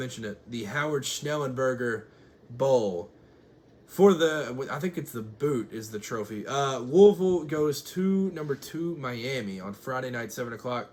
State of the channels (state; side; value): identical; both; correlation 1.00